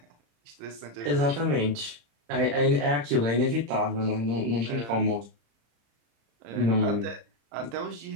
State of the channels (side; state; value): left; late; 35 ms